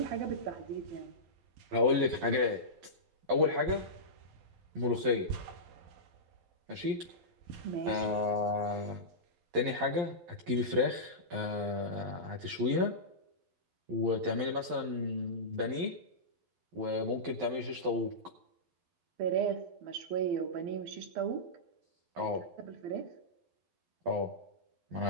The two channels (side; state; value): left; late; 12 ms